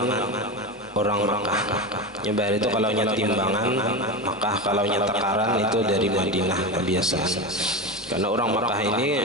orang Makkah. Nyebar itu kalau timbangan Makkah, kalau takaran itu dari Madinah kebiasaan. Karena orang Makkah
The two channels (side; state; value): both; normal; correlation 0.21